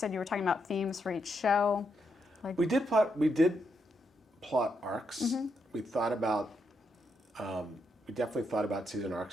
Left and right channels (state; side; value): normal; both; correlation 0.81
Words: you were talking about themes for each show. We did plot arcs. We thought about, we definitely thought about season